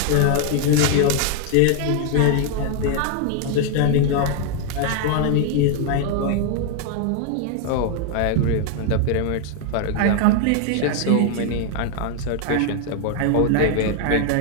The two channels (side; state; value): both; different; correlation 0.00